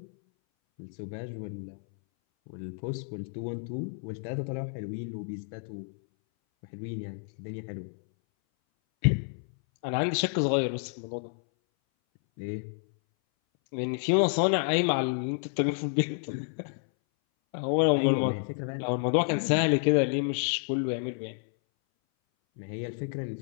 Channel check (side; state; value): right; silent; 58 dB below the other